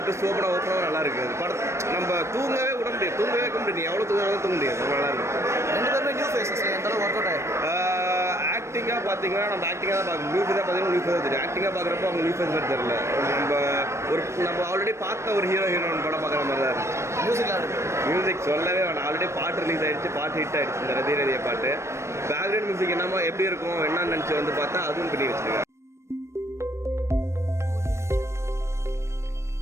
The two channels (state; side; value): late; left; 0.13 ms